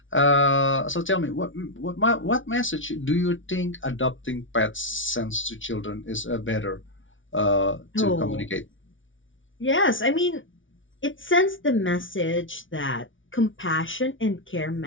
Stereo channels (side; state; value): right; late; 0.56 ms